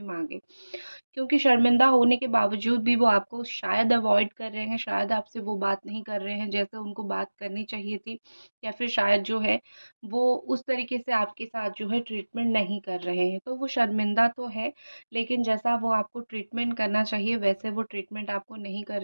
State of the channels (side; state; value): both; inverted; correlation -1.00